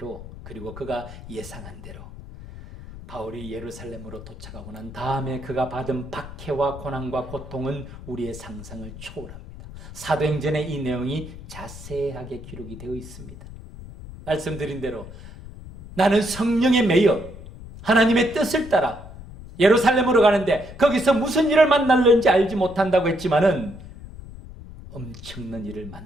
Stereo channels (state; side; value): noise; left; rumble, 15 dB below the sound